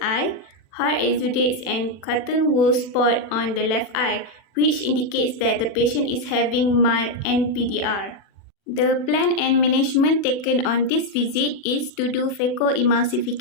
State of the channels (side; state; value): right; late; 40 ms